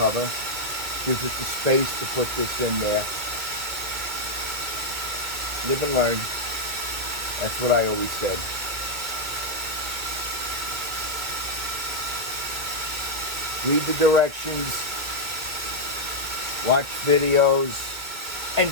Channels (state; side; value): late; left; 2.2 ms